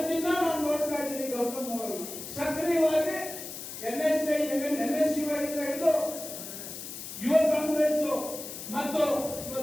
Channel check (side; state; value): left; noise; hiss, 9 dB below the sound